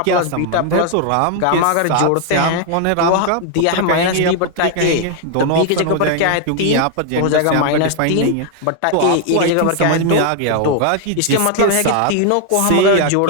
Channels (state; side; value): different; both; correlation 0.00